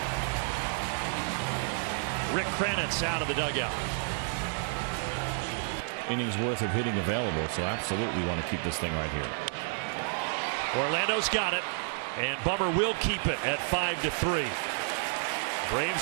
Rick Kranitz out of the dugout. Innings worth of hitting available, so absolutely want to keep this thing right here. Orlando's got it, and Bummer will keep it at 5-3.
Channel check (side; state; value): left; silent; 57 dB below the other